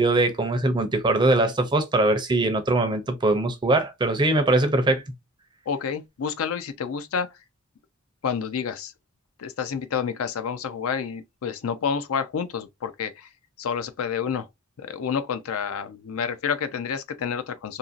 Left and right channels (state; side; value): normal; both; correlation 0.36